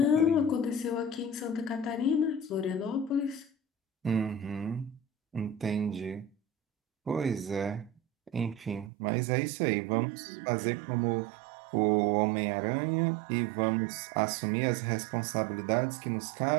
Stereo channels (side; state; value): left; drops out; at 8.9 s